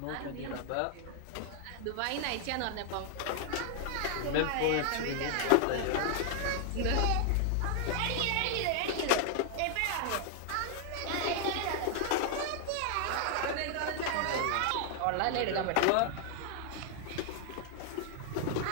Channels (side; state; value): both; different; correlation 0.00